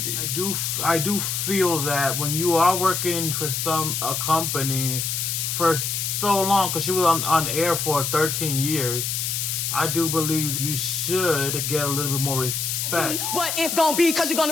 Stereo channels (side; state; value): left; noise; hiss, 1 dB below the sound